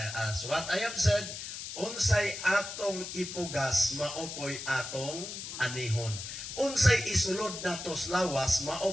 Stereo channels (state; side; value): noise; left; hiss, 8 dB below the sound